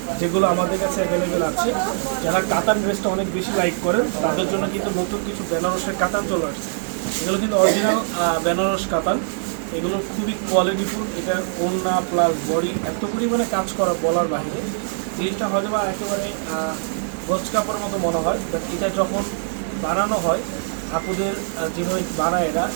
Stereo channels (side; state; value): left; silent; 64 dB below the other